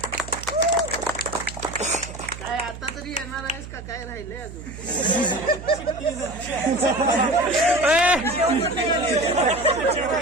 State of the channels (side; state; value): right; noise; hum, 12 dB below the sound